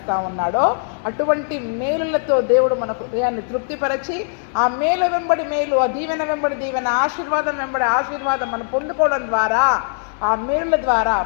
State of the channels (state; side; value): silent; right; digital silence